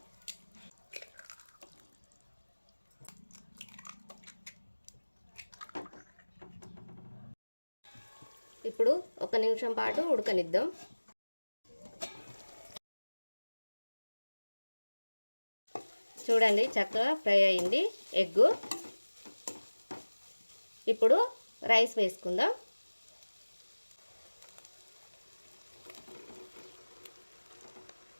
ఇప్పుడు 1 నిమిషం పాటు ఉడకనిద్దాం. చూడండి చక్కగా ఫ్రై అయింది ఎగ్గు. ఇప్పుడు రైస్ వేసుకుందాం.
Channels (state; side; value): inverted; both; correlation -1.00